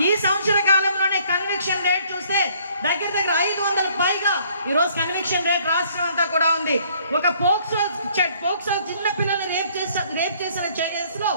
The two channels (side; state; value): both; inverted; correlation -0.62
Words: ఈ సంవత్సర కాలంలోనే కన్విక్షన్ రేట్ చూస్తే దగ్గర 500 పైగా ఈరోజు కన్విక్షన్ రేట్ రాష్ట్రం అంతా కూడా ఉంది. ఒక పోక్సో చిన్న పిల్లల్ని రేప్ చేసిన కేసులో